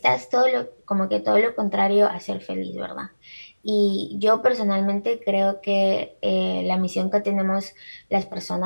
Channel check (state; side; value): inverted; both; correlation -1.00